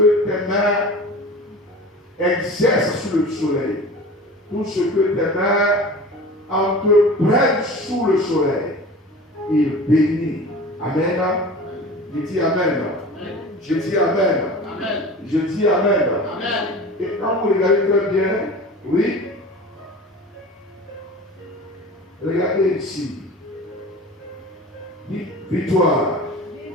tes mains exercent sur le soleil. Tout ce que tes mains entreprennent sous le soleil. Il bénit. Amen. Je dis Amen. Je dis Amen. Amen. Je dis Amen. Amen. Et quand vous regardez très bien, oui, regardez ici. Dites victoire.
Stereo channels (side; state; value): both; normal; correlation 0.37